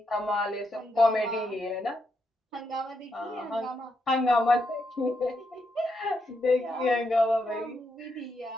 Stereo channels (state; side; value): normal; both; correlation 0.81